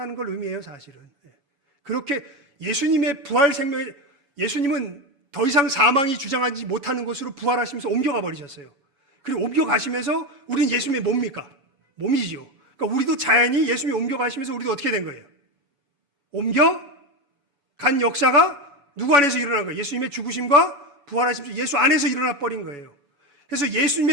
걸 의미해요, 사실은. 그렇게 예수님의 부활 생명에, 예수님은 더 이상 사망이 주장하지 못하는 곳으로 부활하시면서 옮겨가 버리셨어요. 그리고 옮겨가시면서 우리는 예수님의 뭡니까? 몸이지요. 그러니까 우리도 자연히 예수님이 옮겨가시면서 우리도 어떻게 된 거예요? 옮겨간 역사가 누구 안에서 일어난 거예요? 예수님의 죽으심과 부활하시면서 예수 안에서 일어나 버린 거예요. 그래서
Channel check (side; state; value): left; late; 7.1 ms